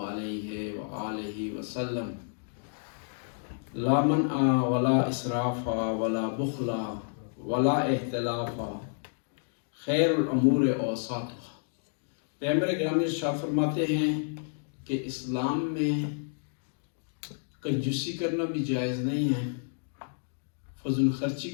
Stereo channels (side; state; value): right; silent; digital silence